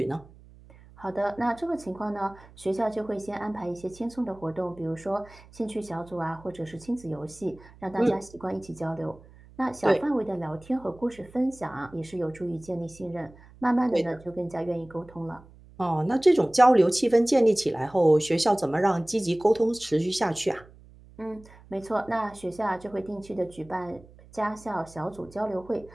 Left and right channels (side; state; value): right; noise; hum, 23 dB below the sound